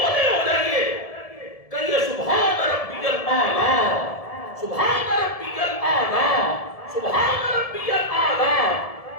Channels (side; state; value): right; late; 1.7 ms